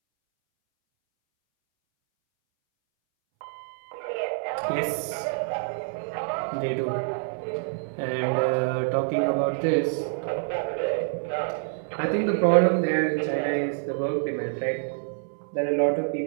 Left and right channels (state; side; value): silent; left; 60 dB below the other